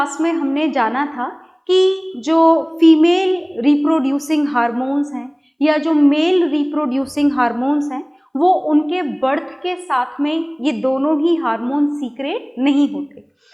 में हमने जाना था कि जो फीमेल रिप्रोड्यूसिंग हार्मोन्स हैं या जो मेल रिप्रोड्यूसिंग हार्मोन्स हैं वो उनके बर्थ के साथ में ये दोनों ही हार्मोन सीक्रेट नहीं होते।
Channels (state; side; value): identical; both; correlation 1.00